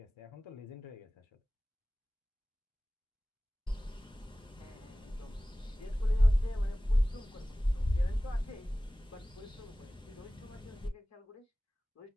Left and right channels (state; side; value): normal; both; correlation 0.98